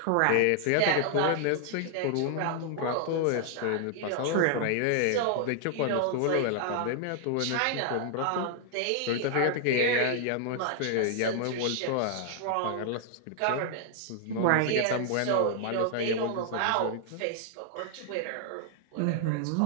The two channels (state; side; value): different; both; correlation 0.00